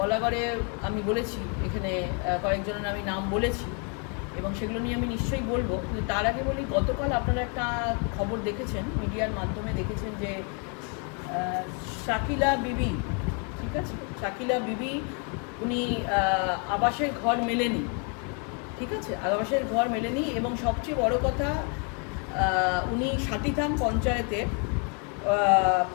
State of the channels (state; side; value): quieter; right; 37.9 dB